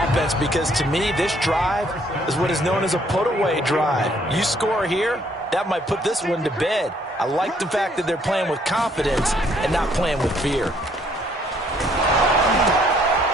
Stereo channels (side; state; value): both; normal; correlation 0.65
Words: because, to me, this drive is what is known as a put-away drive. You score here, that might put this one to bed. I like the fact that they're playing with confidence and not playing with fear.